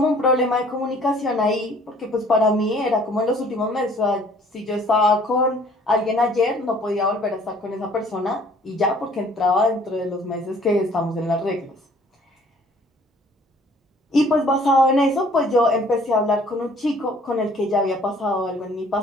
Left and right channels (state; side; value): normal; both; correlation 0.56